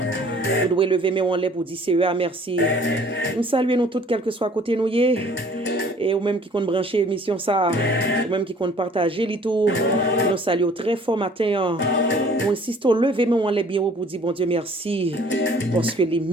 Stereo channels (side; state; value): both; normal; correlation 0.54